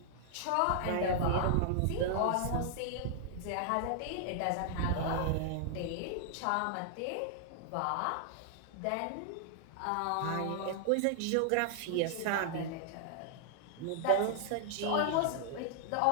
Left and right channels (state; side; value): different; both; correlation -0.01